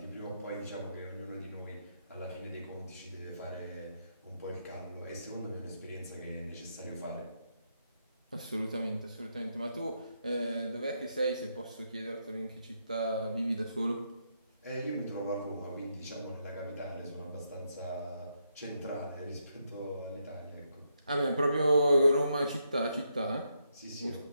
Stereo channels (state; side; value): inverted; both; correlation -0.80